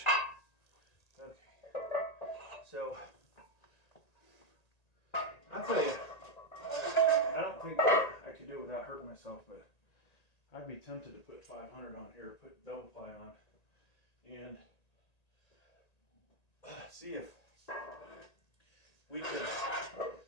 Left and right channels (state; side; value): late; right; 1.9 ms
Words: Okay, so I'll tell you, I don't think I could do it without hurting myself, but I'd be tempted to put 500 on here, put double ply on, and see if we could